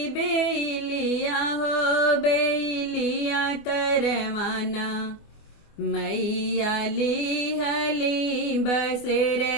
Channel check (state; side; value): late; right; 24 ms